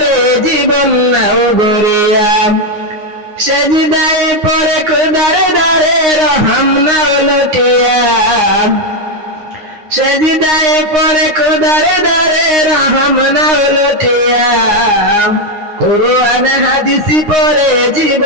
জীবন নাও গড়িয়া। সেজদায় পড়ে খোদার দারে রহম নাও লুটিয়া, সেজদায় পড়ে খোদার দারে রহম নাও লুটিয়া। কোরআন হাদিস পড়ে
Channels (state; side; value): late; left; 9.7 ms